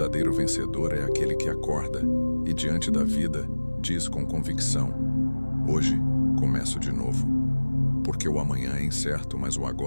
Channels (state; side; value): inverted; both; correlation -1.00